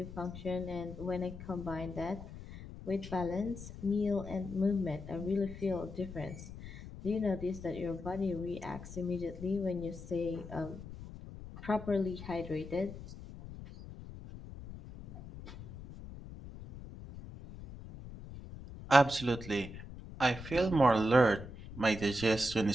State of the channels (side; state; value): left; noise; rumble, 13 dB below the sound